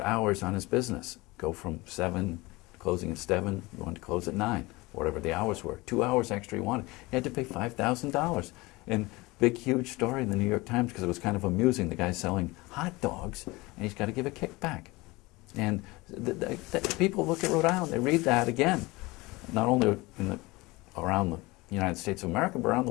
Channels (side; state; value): right; quieter; 22.5 dB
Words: hours on his business. Go from 7, closing at 7, going to close at 9. Whatever the hours were, 2 hours extra he wanted. He had to pay $5,000. And big, huge story in the New York Times because it was kind of amusing. The guy's selling hot dogs, and he's got to give a kickback. And people look at Rhode Island, they read that again, not only around the United States of America, but around the